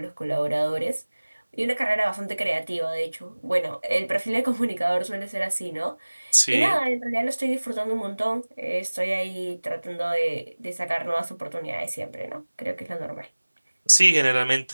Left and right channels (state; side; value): inverted; both; correlation -1.00